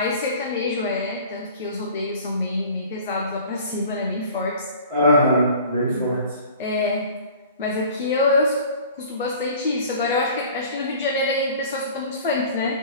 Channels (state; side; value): inverted; both; correlation -0.45